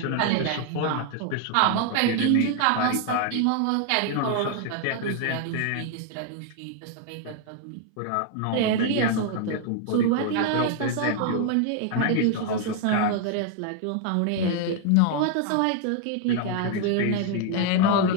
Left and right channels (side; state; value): both; different; correlation 0.00